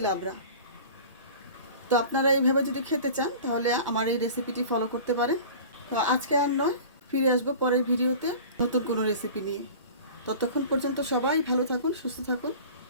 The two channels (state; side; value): inverted; both; correlation -0.40